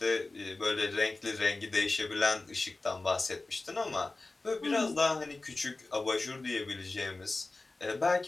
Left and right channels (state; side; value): quieter; right; 3.2 dB